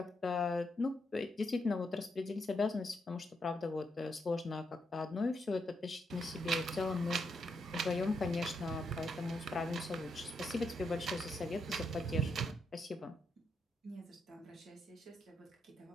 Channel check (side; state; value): both; normal; correlation 0.80